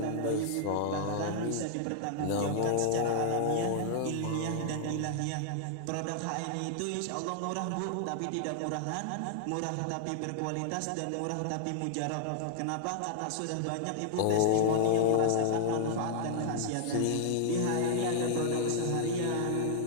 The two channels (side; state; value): both; different; correlation 0.00